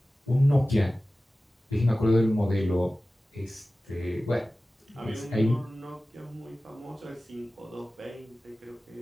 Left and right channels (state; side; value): normal; both; correlation 0.96